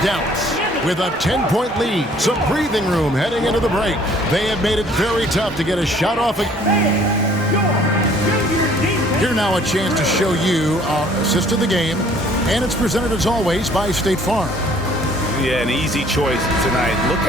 Dallas with a 10-point lead. Some breathing room heading into the break. They have made it very tough to get a shot off. Here now a chance to show you our assist of the game. And it's presented as always by State Farm. Yeah, an easy choice tonight. Look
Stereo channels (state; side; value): normal; both; correlation 0.57